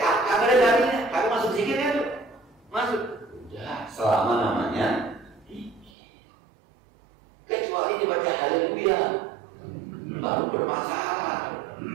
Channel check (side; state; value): left; drops out; at 5.9 s